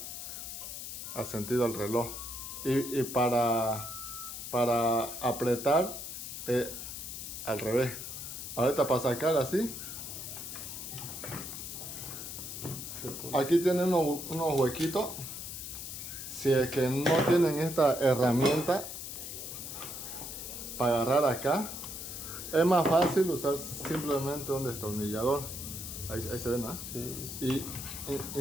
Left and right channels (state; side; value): noise; left; hiss, 8 dB below the sound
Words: al sentido al reloj y para apretar al revés. Ahorita para sacar así, Se pone. aquí tienen unos huequitos. Si es que no tienen esta herramienta para agarrar acá, es más fácil usar simplemente un destornillador. Ahí se ven, ¿no? Sí. Y